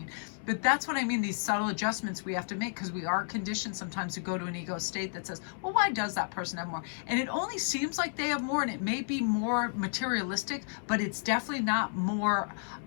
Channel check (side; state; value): right; silent; digital silence